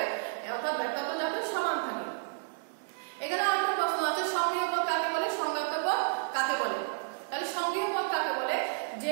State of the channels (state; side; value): silent; left; 57 dB below the other